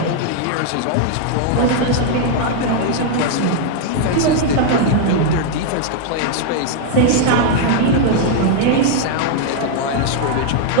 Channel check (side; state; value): both; different; correlation 0.00